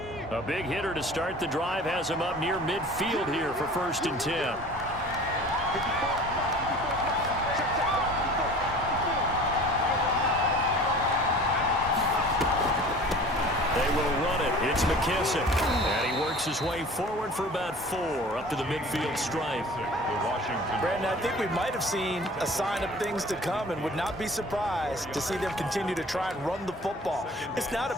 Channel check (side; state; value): both; normal; correlation 0.44